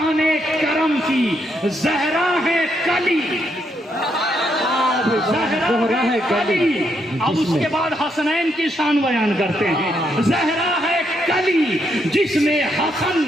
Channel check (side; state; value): both; normal; correlation 0.77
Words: کرم کی. زہرا ہے کلی، زہرا ہے کلی. اب اس کے بعد حسنین کی شان بیان کرتے ہیں. زہرا ہے کلی جس میں حسن